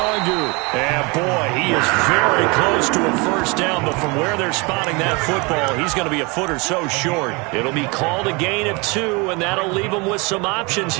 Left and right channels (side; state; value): left; quieter; 27.9 dB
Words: And boy, he is very close to a 1st down, but from where they're spotting that football, he's going to be a foot or so short. It'll be called a gain of 2, and that'll leave them with some options